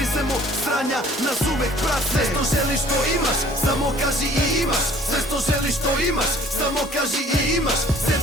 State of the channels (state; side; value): normal; both; correlation 0.54